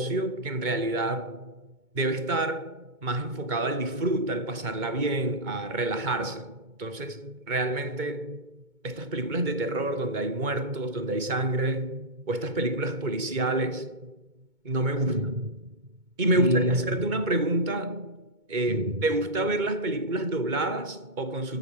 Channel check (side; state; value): left; late; 2.2 ms